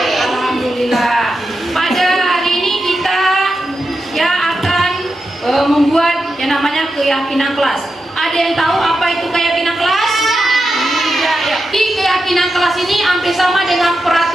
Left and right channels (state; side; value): normal; both; correlation 0.88